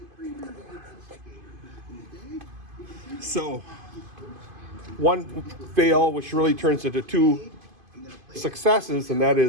So one fail, which really turns into 2 successes, and that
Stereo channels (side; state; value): left; late; 2.5 ms